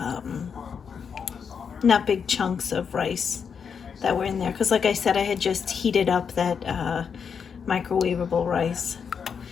not big chunks of rice that were in there, because like I said, I had just heated up that microwavable rice.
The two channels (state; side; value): quieter; right; 6.6 dB